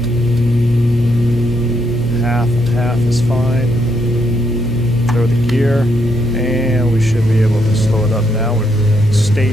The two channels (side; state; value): left; noise; hum, 13 dB below the sound